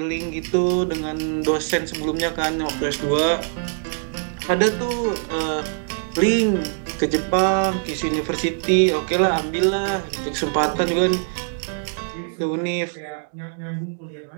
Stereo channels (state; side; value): silent; left; digital silence